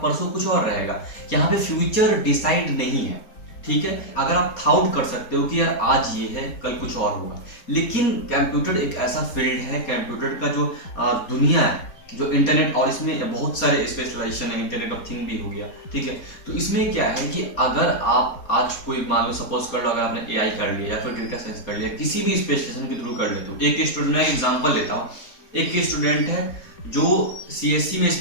परसों कुछ और रहेगा। यहाँ पे फ्यूचर डिसाइड नहीं है, ठीक है। अगर आप थाउट कर सकते हो कि यार आज ये है, कल कुछ और होगा, लेकिन कंप्यूटर एक ऐसा फील्ड है, कंप्यूटर का जो दुनिया है, जो इंटरनेट, और इसमें बहुत सारे स्पेशलाइजेशन है, इंटरनेट ऑफ थिंग भी हो गया, ठीक है। तो इसमें क्या है कि अगर आप आज कोई मान लो, सपोज कर लो अगर आपने एआई कर लिया या फिर डेटा साइंस कर लिया, किसी भी स्पेशलाइजेशन के थ्रू कर लेते हो। एक स्टूडेंट, मैं एग्जांपल लेता हूँ, एक स्टूडेंट है जो सीएससी में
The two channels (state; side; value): late; right; 4.2 ms